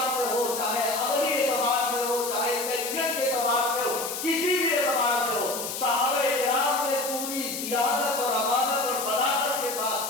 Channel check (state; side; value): noise; left; hiss, 5 dB below the sound